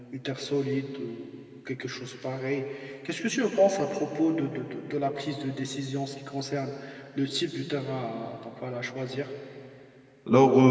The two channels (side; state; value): both; identical; correlation 1.00